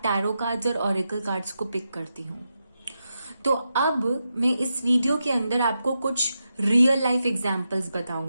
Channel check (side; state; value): both; inverted; correlation -0.87